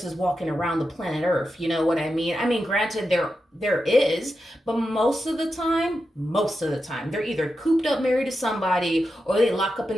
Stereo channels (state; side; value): normal; both; correlation 0.89